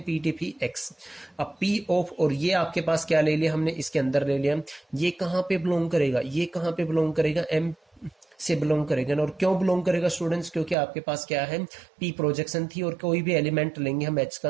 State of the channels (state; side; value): drops out; left; at 10.8 s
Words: P T P x. अब पी ऑफ, और ये आपके पास क्या ले लिया हमने? इसके अंदर ले लिया। ये कहाँ पे बिलोंग करेगा? ये कहाँ पे बिलोंग करेगा? एम से बिलोंग करेगा ना। और क्यों बिलोंग करेगा स्टूडेंट्स? क्योंकि आपके पास क्या है? पी प्रोजेक्शन थी, और कोई भी एलिमेंट लेंगे हम एच